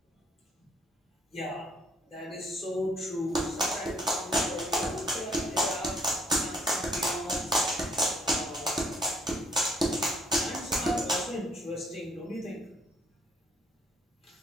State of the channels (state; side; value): normal; both; correlation 0.64